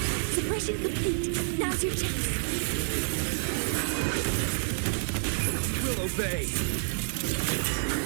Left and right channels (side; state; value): left; silent; 59 dB below the other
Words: Suppression complete. Now's your chance. We'll obey.